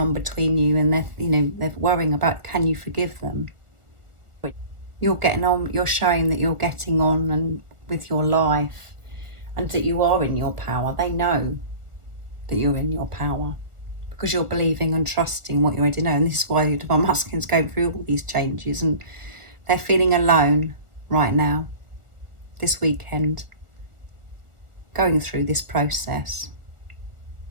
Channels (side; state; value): left; late; 1.2 ms